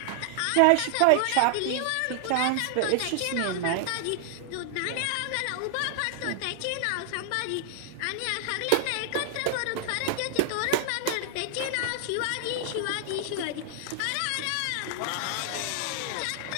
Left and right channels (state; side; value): different; both; correlation 0.00